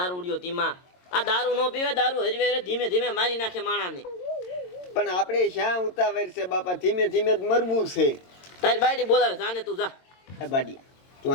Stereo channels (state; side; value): late; right; 22 ms